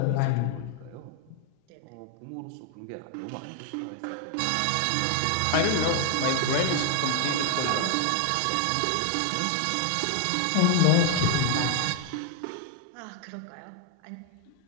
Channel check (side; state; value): both; different; correlation 0.00